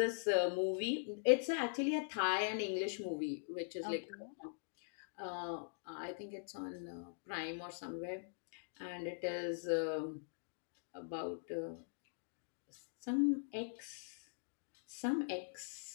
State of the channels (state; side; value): silent; right; digital silence